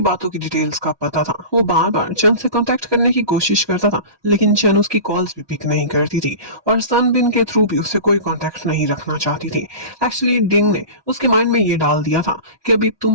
बातों की डिटेल्स का पता था, वो बार बार चन से कांटेक्ट करने की कोशिश करता था, लेकिन चन उसकी कॉल्स भी पिक नहीं करती थी और सनबिन के थ्रू भी उससे कोई कांटेक्ट नहीं रखना चाहती थी। एक्चुअली डिंग ने उसके माइंड में ये डाल दिया था कि अभी तुम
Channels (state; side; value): late; left; 1.2 ms